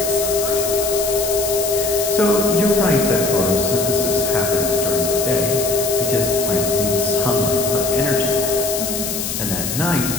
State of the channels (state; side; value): noise; left; hiss, 4 dB below the sound